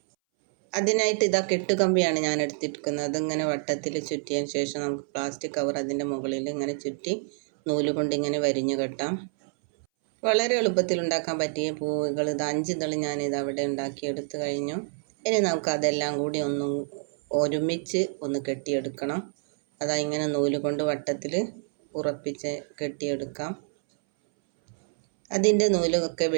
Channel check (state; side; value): silent; left; 60 dB below the other